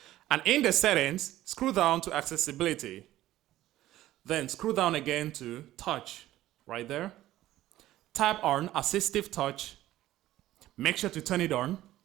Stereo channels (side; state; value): left; quieter; 14.7 dB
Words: And in the settings, scroll down to accessibility. Then scroll down again to touch, right there. Tap on assistive touch. Make sure to turn it on.